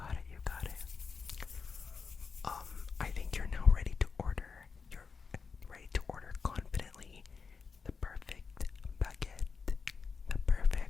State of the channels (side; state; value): right; quieter; 5.2 dB